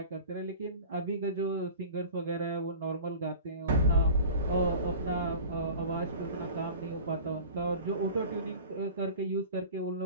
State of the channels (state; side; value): inverted; both; correlation -0.40